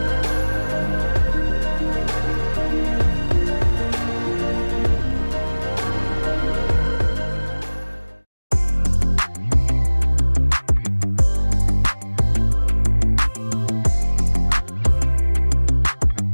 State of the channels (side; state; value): both; inverted; correlation -1.00